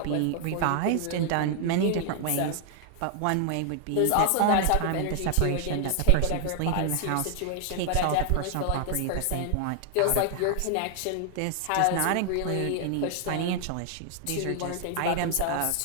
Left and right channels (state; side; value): different; both; correlation 0.00